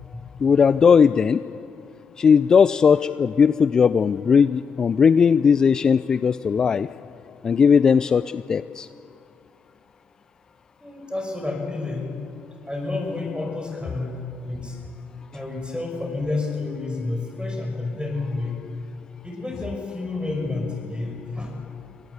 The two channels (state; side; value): quieter; right; 5.7 dB